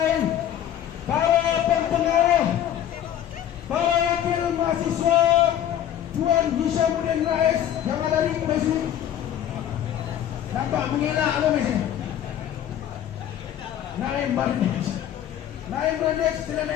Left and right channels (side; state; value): right; quieter; 10.7 dB